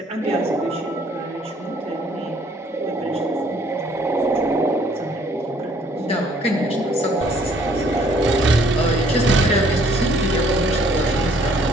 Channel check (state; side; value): normal; both; correlation 0.61